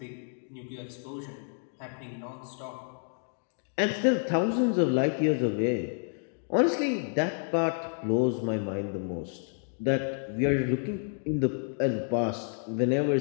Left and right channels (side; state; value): right; silent; 57 dB below the other